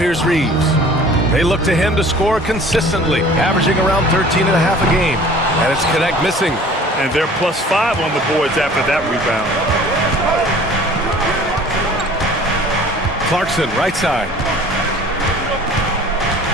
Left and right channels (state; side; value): normal; both; correlation 0.48